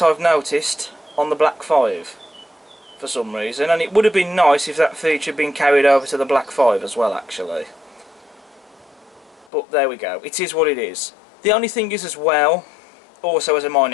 I've noticed, on the Black 5 for some reason, and it would have been nice if that feature had been carried over to the Black 5 as well actually. But there we go, it is what it is. The only thing is as well, also as a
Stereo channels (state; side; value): drops out; right; at 9.5 s